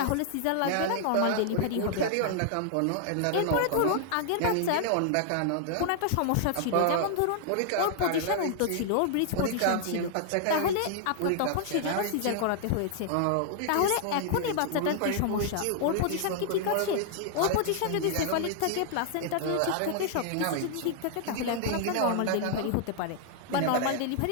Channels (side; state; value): both; different; correlation 0.00